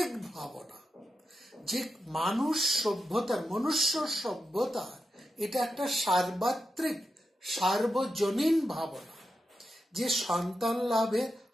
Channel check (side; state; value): both; normal; correlation 0.88